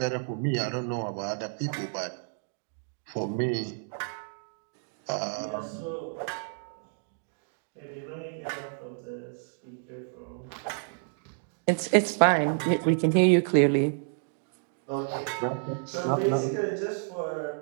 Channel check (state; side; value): silent; left; 58 dB below the other